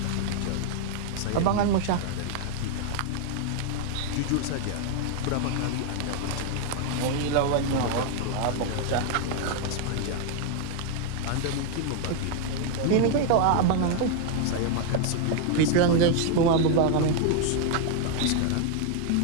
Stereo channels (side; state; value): both; different; correlation 0.00